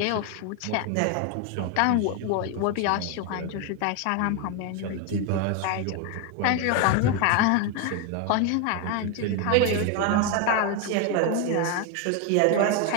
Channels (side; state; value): both; different; correlation 0.01